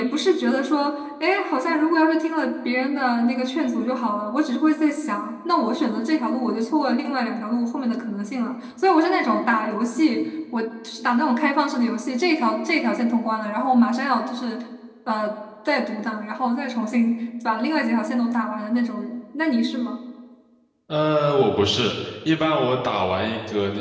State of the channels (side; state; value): both; identical; correlation 1.00